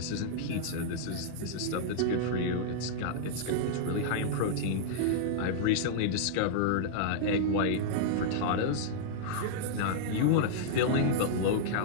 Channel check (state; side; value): different; both; correlation -0.02